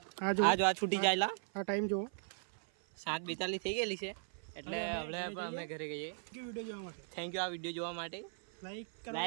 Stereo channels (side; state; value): left; silent; 52 dB below the other